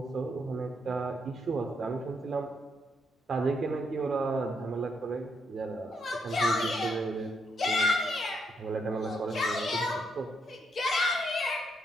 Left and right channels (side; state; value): both; normal; correlation 0.77